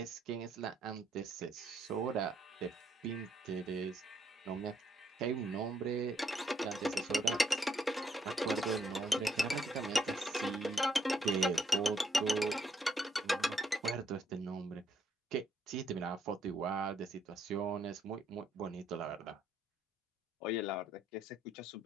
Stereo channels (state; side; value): normal; both; correlation 0.73